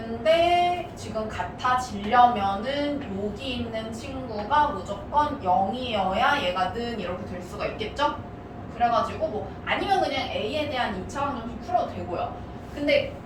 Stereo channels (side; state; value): both; identical; correlation 1.00